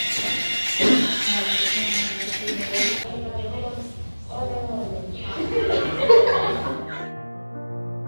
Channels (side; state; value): both; inverted; correlation -1.00